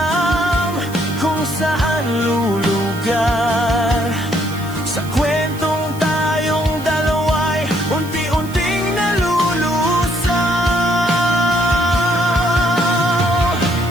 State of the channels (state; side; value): noise; right; hiss, 18 dB below the sound